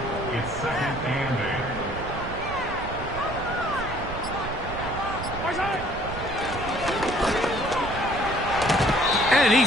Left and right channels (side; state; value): right; noise; rumble, 9 dB below the sound